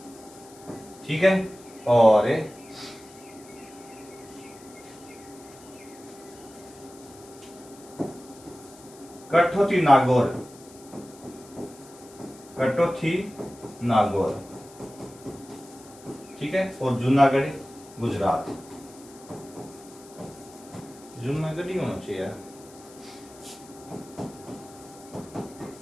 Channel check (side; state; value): left; noise; hiss, 22 dB below the sound